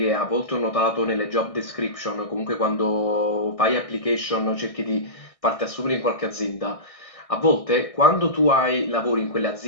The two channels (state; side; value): late; right; 1.6 ms